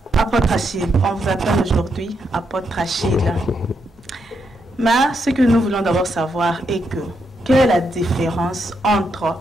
apôtre Achille, on vous appelle aujourd'hui apôtre Achille. Mais ce que nous voulons d'abord savoir est que, quelle est la différence entre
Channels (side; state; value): both; normal; correlation 0.80